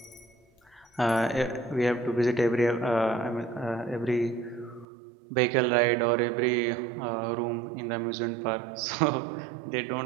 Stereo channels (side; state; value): left; drops out; at 4.9 s